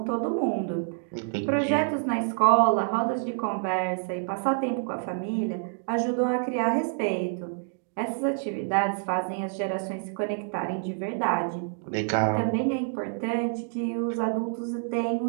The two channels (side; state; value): left; silent; digital silence